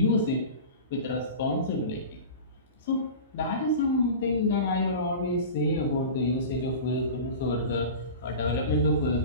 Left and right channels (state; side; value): inverted; both; correlation -0.33